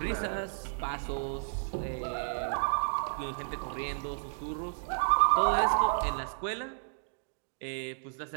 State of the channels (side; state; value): left; silent; digital silence